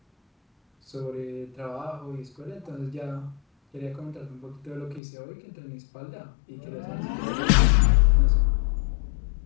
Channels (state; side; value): drops out; right; at 5.0 s